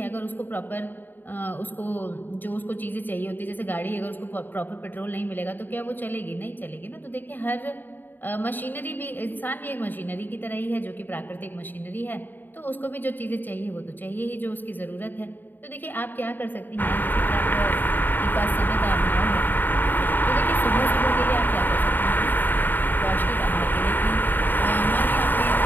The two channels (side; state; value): right; late; 0.091 ms